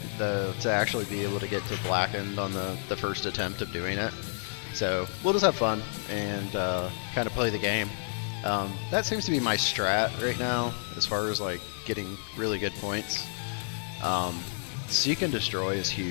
though, to actually be able to get to Blackened on the first attempt of doing it. So we'll just have fun and kind of play the game. That seems to be my strat right now, as far as like getting really good points. Seek and Destroy is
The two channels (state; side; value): silent; right; digital silence